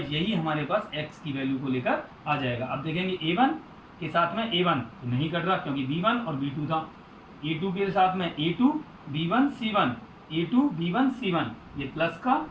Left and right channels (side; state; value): both; identical; correlation 1.00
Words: यही हमारे पास x की वैल्यू को लेकर आ जाएगा। अब देखेंगे a1 के साथ में a1 तो नहीं कट रहा क्योंकि b1 और b2 था, a2 के साथ में a2 b1 c1, a2 b1 c1, ये प्लस का